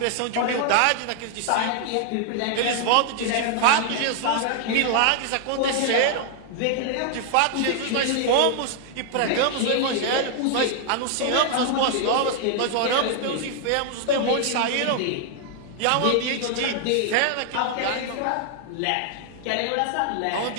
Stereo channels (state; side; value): different; both; correlation 0.00